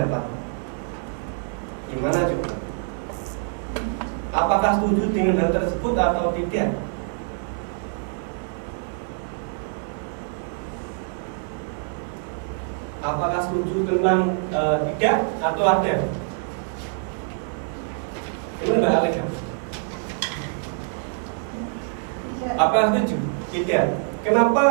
Gimana juga? Apakah setuju dengan hal tersebut atau tidak? Apakah setuju tentang tidak atau ada? Ini Mbak Alika. Apa setuju? Tidak.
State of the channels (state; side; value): silent; left; 57 dB below the other